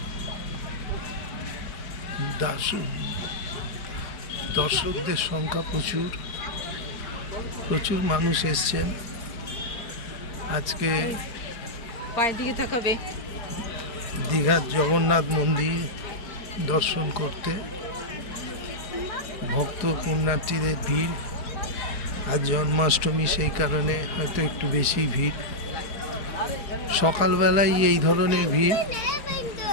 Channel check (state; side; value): late; right; 4.7 ms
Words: দর্শকদের সংখ্যা প্রচুর মানুষ এসছেন আজকে দীঘার জগন্নাথ মন্দির দর্শন করতে। ভক্ত পুণ্যার্থীদের ভিড়, আজ জন্মাষ্টমী, সেই কারণে হয়তো একটু বেশি ভিড়। সকালবেলায় এই ধরনের ভিড়,